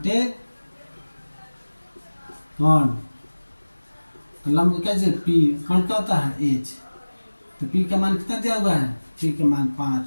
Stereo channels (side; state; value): both; inverted; correlation -1.00